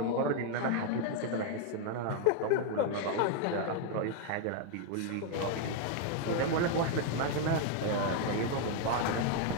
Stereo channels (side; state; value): both; different; correlation 0.00